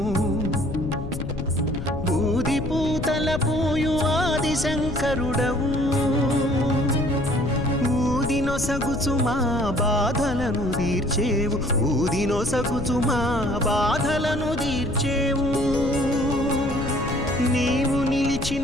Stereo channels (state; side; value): noise; left; rumble, 7 dB below the sound